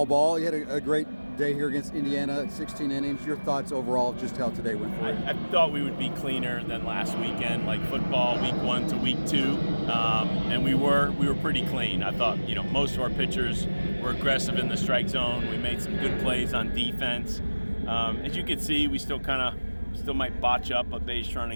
ball. You had a great day here against Indiana, 16 innings. Your thoughts overall of just how today went for you? I thought we would be cleaner than last weekend, like football week 1 to week 2, and we were pretty clean. I thought most of our pitchers were aggressive in the strike zone. We made some good plays on defense. As you can see, we still might botch up a base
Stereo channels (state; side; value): inverted; both; correlation -1.00